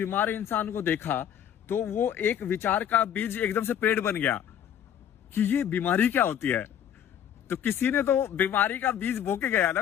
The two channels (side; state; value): right; quieter; 9.6 dB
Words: इंसान को देखा तो वो एक विचार का बीज एकदम से पेड़ बन गया कि ये बीमारी क्या होती है। तो किसी ने तो बीमारी का बीज बो के गया